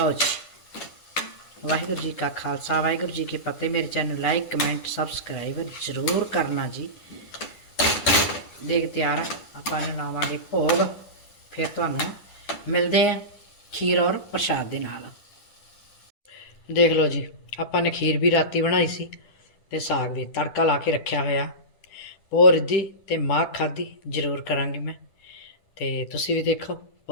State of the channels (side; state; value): right; late; 10 ms